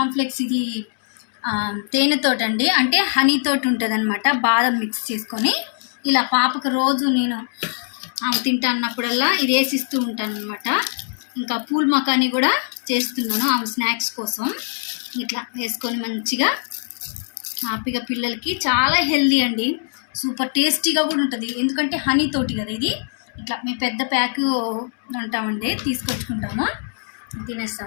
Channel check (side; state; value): right; silent; 64 dB below the other